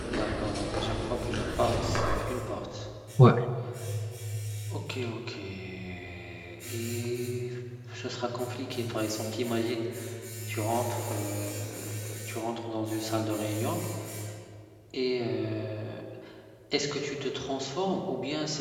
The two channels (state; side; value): identical; both; correlation 1.00